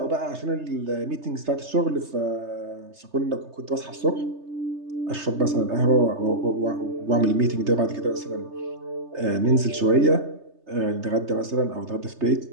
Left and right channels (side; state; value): left; late; 3.3 ms